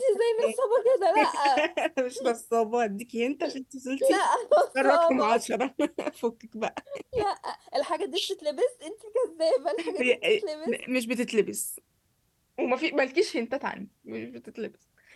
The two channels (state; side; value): identical; both; correlation 1.00